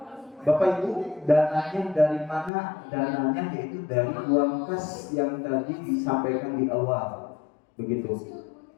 Bapak Ibu, dananya dari mana? Dananya yaitu dari uang kas yang tadi disampaikan di awal. Begitu.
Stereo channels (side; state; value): right; drops out; at 2.5 s